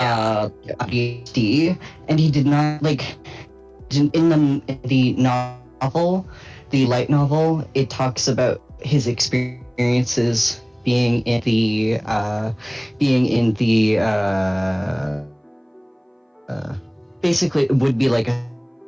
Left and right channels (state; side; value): identical; both; correlation 1.00